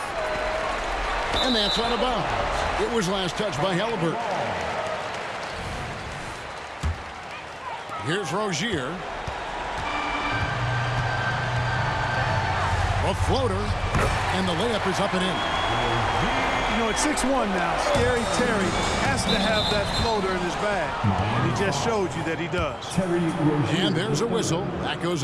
And that's out of bounds. It was last touched by Halliburton. Here's Rozier. A floater, and the layup is up and in. You know, it's 6-1 now. Scary Terry has to have that floater in his bag. And he just showed you that he does. Terry Rozier. And there's a whistle. That goes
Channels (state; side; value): identical; both; correlation 1.00